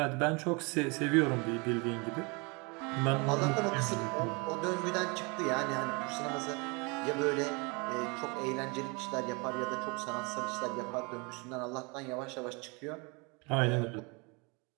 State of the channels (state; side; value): quieter; left; 29.6 dB